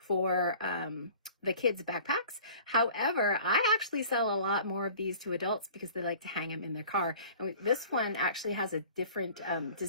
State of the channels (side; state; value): both; inverted; correlation -0.46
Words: the kids' backpacks. However, I actually sell a lot more of these to adults because they like to hang them in their car. And this one actually has a different